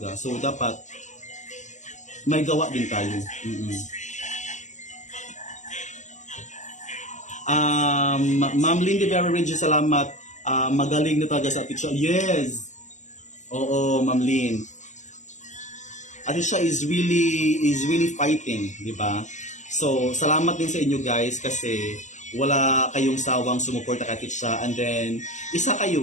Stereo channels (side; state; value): right; late; 0.35 ms